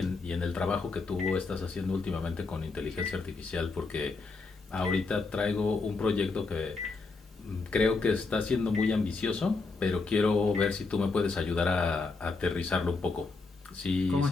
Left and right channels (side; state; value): right; quieter; 4.0 dB